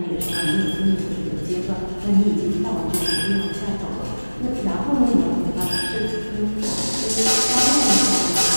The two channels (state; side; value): inverted; both; correlation -1.00